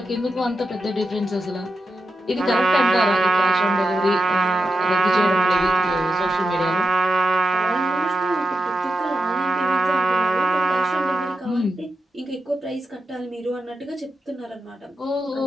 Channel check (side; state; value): both; normal; correlation 0.89